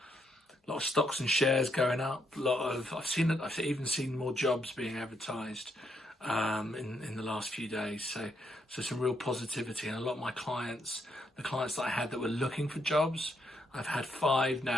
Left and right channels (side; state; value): both; normal; correlation 0.76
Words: A lot of stocks and shares going up. I've even seen more jobs being advertised in the last few days. So some real positivity, and a lot of my clients, the clients that I had that were looking for jobs, I've had 5